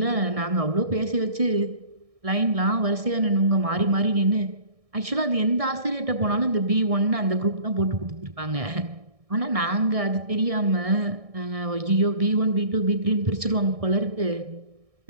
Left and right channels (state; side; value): late; left; 1.6 ms